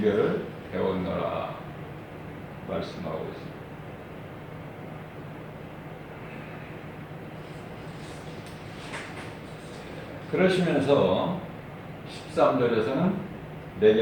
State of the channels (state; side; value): identical; both; correlation 1.00